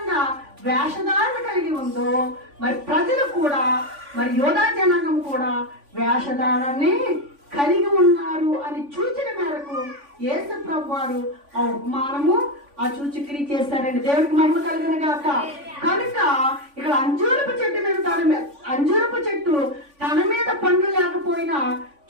వేషధారణ కలిగి ఉందో మరి ప్రజలు కూడా, మరి యోధా జనాంగం కూడా వేషధారణని కలిగి ఉన్నారు అని సూచన మేరకు యేసు ప్రభు వారు ఆ ఉపమానము ఆ సూచక్రియ చేశారండి. దేవుడికి మహిమ కలుగును గాక. కనుక ఇక్కడ అంజూరపు చెట్టు తన మీద పండ్లు లేకపోయినా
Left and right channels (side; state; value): left; late; 3.5 ms